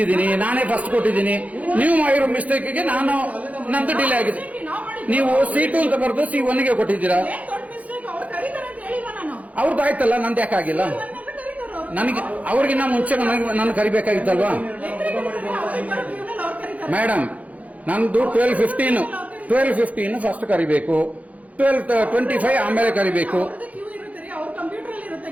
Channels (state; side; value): late; left; 0.070 ms